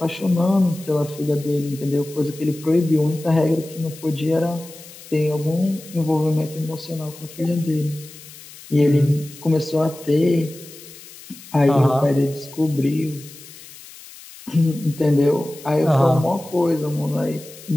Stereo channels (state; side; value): noise; left; hiss, 18 dB below the sound